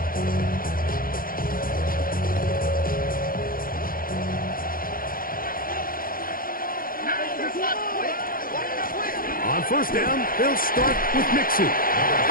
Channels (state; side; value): late; right; 0.42 ms